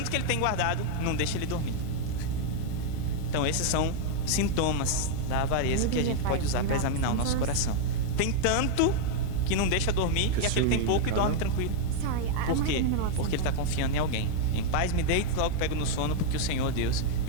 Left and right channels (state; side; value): different; both; correlation 0.00